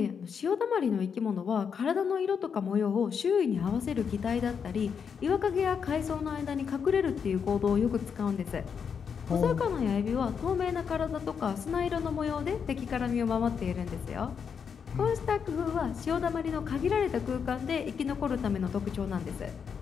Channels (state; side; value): quieter; right; 6.7 dB